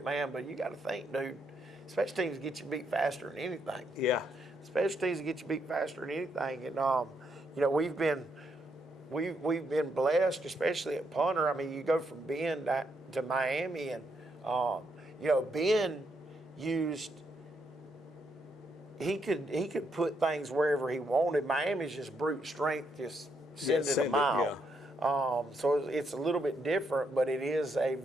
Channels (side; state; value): both; normal; correlation 0.77